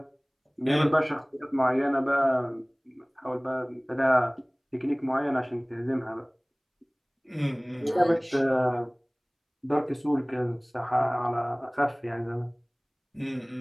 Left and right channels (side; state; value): both; identical; correlation 1.00